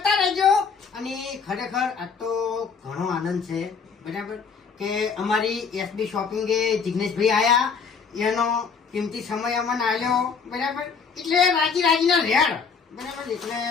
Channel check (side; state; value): right; quieter; 5.7 dB